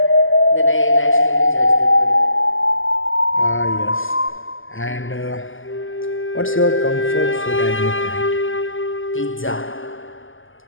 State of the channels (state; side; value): late; right; 0.58 ms